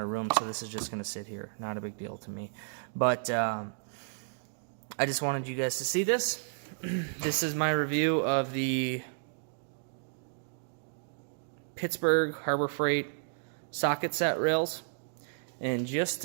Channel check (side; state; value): left; silent; digital silence